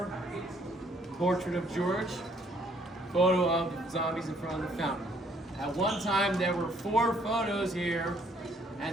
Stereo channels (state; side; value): normal; both; correlation 0.65